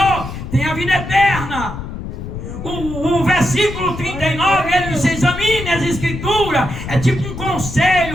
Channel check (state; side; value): noise; left; rumble, 8 dB below the sound